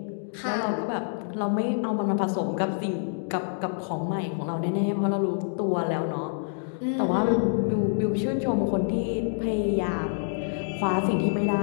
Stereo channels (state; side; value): silent; right; digital silence